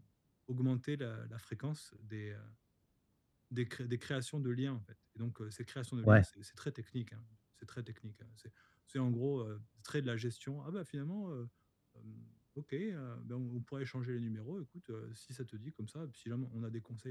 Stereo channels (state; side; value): identical; both; correlation 1.00